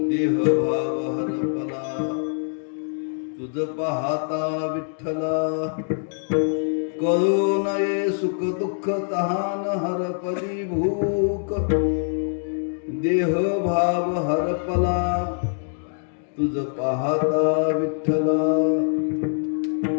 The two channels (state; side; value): silent; right; 63 dB below the other